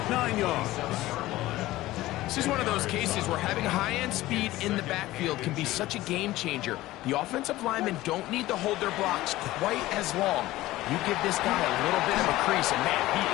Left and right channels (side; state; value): right; quieter; 17.0 dB